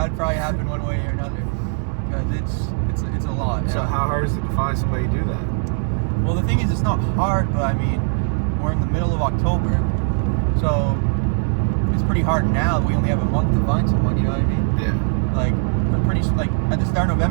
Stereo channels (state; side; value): silent; left; 63 dB below the other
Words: probably happen one way or another. Because it's a lot. So how hard is it to find somebody to do that? Well, the thing is, it's not hard, but I mean, we're in the middle of October, so it's pretty hard now. We only have a month to find someone. You know what I mean? Yeah. But pretty at the start of